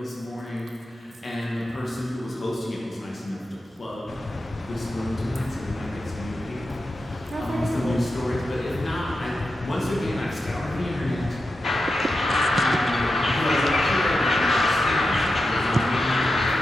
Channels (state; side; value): normal; both; correlation 0.89